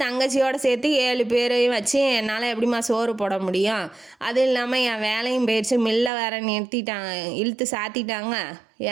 தங்கச்சியோடு சேர்த்து 7 பேரையும் வச்சு என்னால் எப்படிம்மா சோறு போட முடியும்? அதுவும் இல்லாமல் என் வேலையும் போயிடுச்சு, மில்லை வேற நிறுத்திட்டாங்க, இழுத்து சாத்திட்டாங்க,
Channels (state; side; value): drops out; left; at 6.1 s